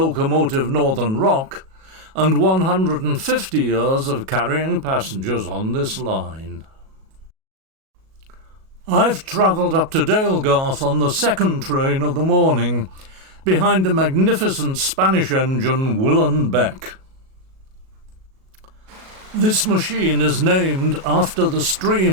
Northern Rock and 150 years of carrying passengers on this line. I've travelled up to Dalegarth on the second train of the morning, behind a magnificent Spanish engine Will & Beck. This machine is named after the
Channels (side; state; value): left; late; 37 ms